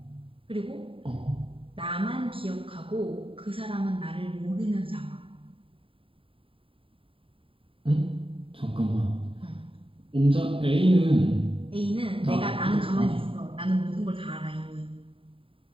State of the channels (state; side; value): late; left; 0.26 ms